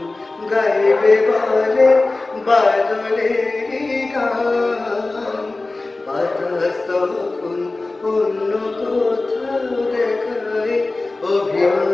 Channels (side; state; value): right; quieter; 3.2 dB